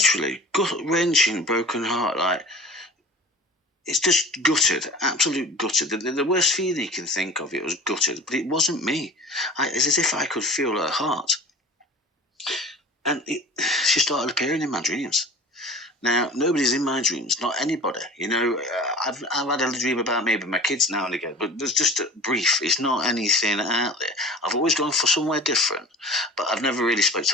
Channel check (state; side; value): normal; both; correlation 0.40